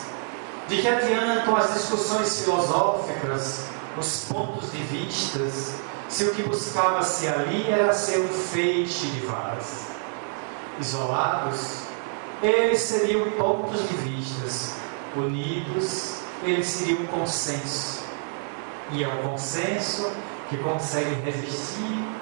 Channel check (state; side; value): silent; left; 59 dB below the other